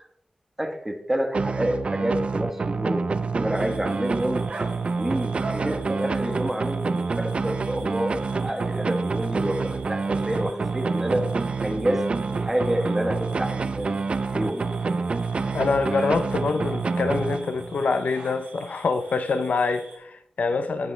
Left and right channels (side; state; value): both; normal; correlation 0.90